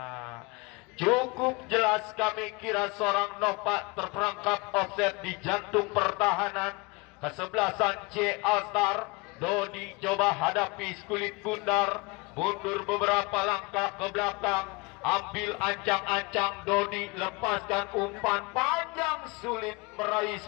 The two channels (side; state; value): right; quieter; 26.1 dB